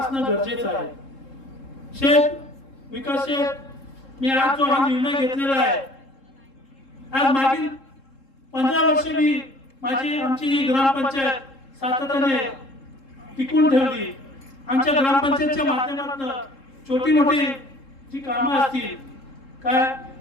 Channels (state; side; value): late; right; 3.7 ms